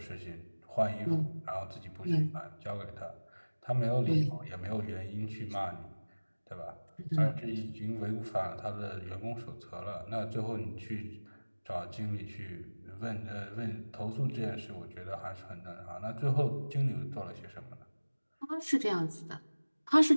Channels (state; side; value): inverted; both; correlation -1.00